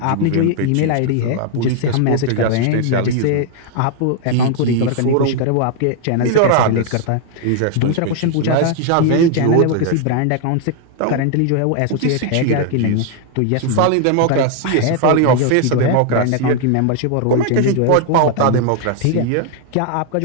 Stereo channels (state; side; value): different; both; correlation 0.00